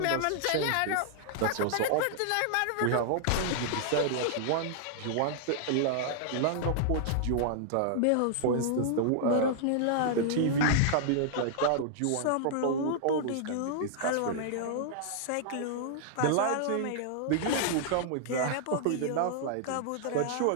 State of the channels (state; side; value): different; both; correlation -0.01